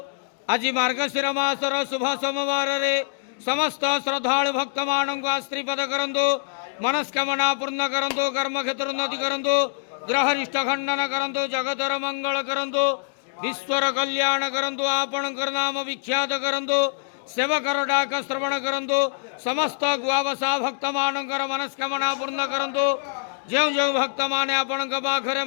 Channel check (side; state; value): right; silent; digital silence